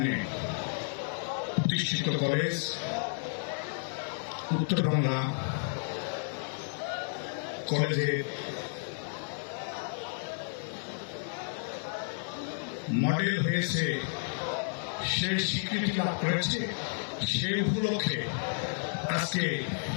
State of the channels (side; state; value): right; silent; digital silence